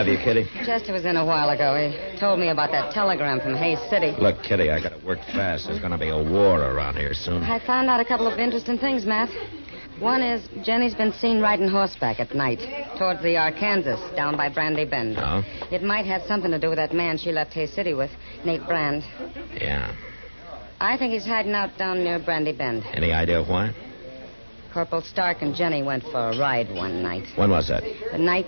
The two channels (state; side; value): inverted; both; correlation -1.00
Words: you, Kitty? Chester was in a while ago. He told me about that telegram from Hayes City. Look, Kitty, I gotta work fast. There's gonna be a war around here soon. I found out a couple of interesting things, Matt. One is Jenny's been seen riding horseback at night towards the Arkansas down by Brandy Bend. Oh? It might have something to do with that man she left Hayes City with, Nate Brand. Yeah. I think he's hiding out down near Brandy Bend. Any idea why? Corporal Stark and Jenny went for a ride one night. When was that? The night